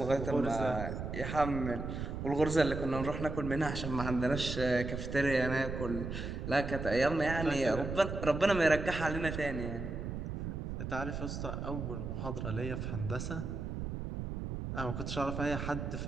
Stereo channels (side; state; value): right; noise; rumble, 5 dB below the sound